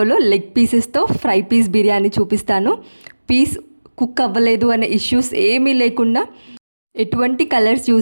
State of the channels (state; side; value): inverted; both; correlation -1.00